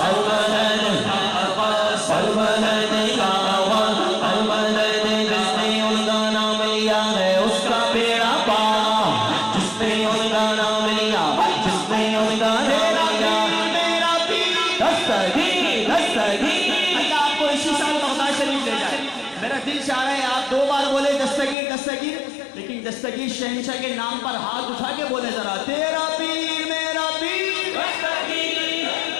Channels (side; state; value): right; drops out; at 21.6 s